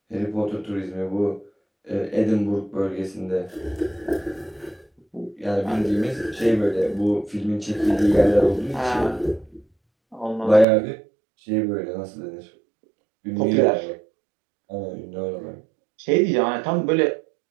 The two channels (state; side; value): drops out; left; at 10.7 s